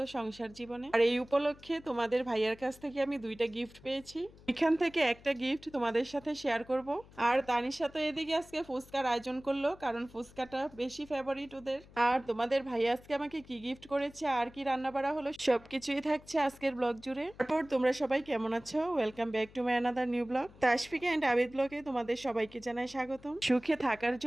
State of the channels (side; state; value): left; noise; hum, 23 dB below the sound